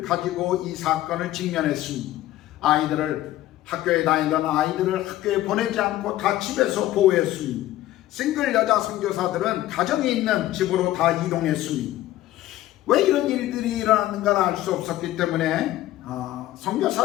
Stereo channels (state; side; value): quieter; right; 14.7 dB